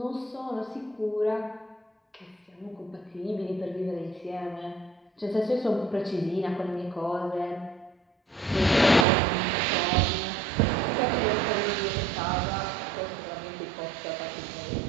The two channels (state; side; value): drops out; left; at 9.1 s